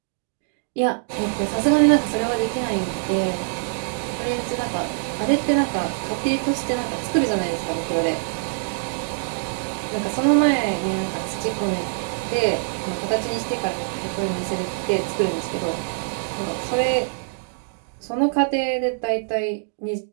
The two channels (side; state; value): left; silent; digital silence